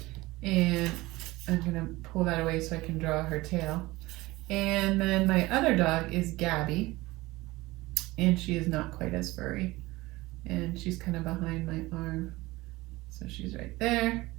And I'm gonna pull that away so I can draw her tail. And then my other dog is Gabby, and she is not quite as furry, and she's kind of behind my arm, so she's right there.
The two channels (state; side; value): quieter; left; 20.1 dB